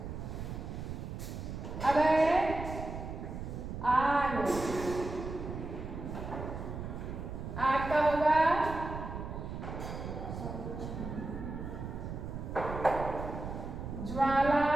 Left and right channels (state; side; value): noise; right; rumble, 7 dB below the sound